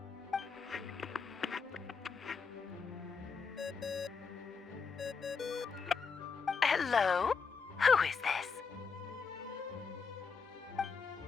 Hello? Who is this?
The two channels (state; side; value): quieter; right; 5.4 dB